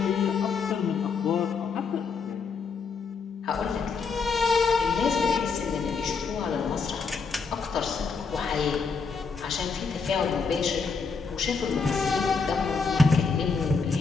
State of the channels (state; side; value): quieter; right; 5.0 dB